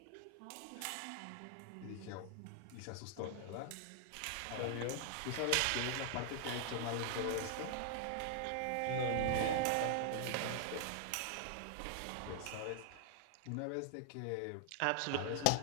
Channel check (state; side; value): different; both; correlation 0.00